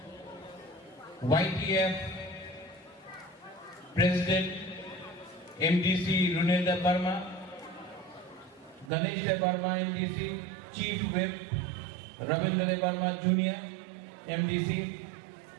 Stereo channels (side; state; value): left; drops out; at 8.9 s